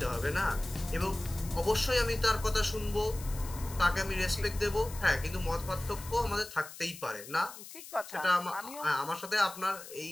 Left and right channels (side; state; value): left; noise; hiss, 14 dB below the sound